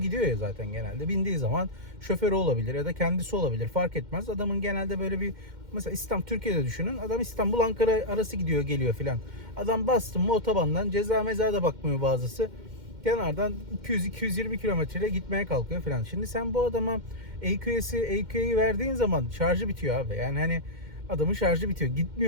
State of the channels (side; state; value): left; late; 2.1 ms